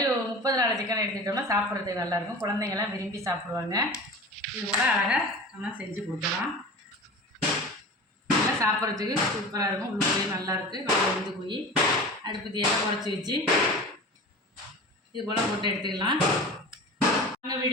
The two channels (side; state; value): both; normal; correlation 0.35